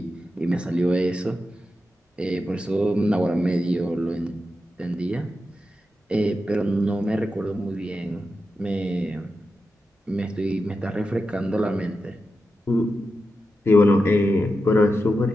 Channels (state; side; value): normal; both; correlation 0.89